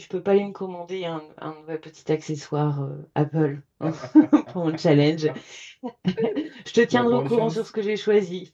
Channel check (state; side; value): identical; both; correlation 1.00